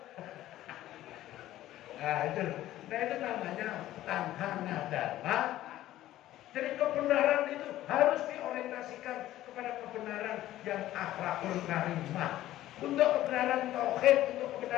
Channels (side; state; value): right; quieter; 14.3 dB